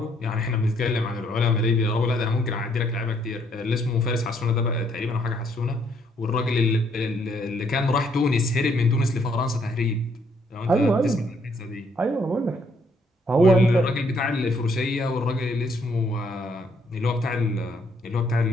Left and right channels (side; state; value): both; normal; correlation 0.69